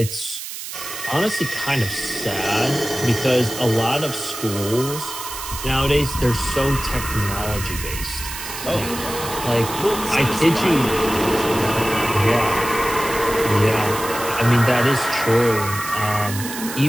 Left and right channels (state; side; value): noise; right; hiss, 9 dB below the sound